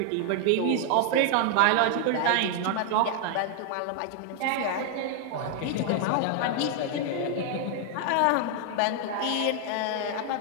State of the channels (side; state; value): both; different; correlation 0.00